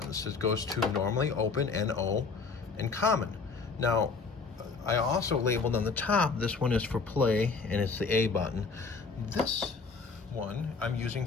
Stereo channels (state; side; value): quieter; right; 4.6 dB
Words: It goes to normally, open, NO, and common. Now, I also labeled on the top, this one is for play, and it's the A button. This one I'm using